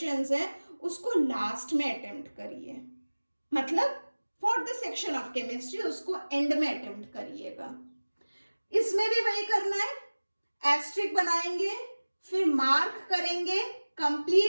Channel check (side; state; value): both; inverted; correlation -1.00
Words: हैं उसको लास्ट में अटेम्प्ट करिए. मतलब for the section of chemistry उसको एंड में अटेम्प्ट करिएगा. इसमें भी वही करना है, एस्ट्रिक बनाएंगे, फिर मार्क करेंगे,